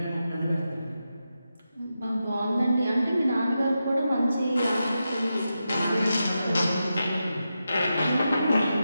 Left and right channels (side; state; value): both; inverted; correlation -0.89